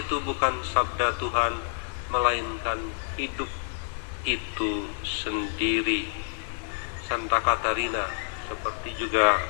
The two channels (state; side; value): silent; right; digital silence